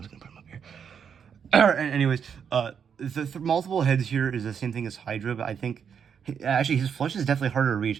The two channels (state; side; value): quieter; left; 7.3 dB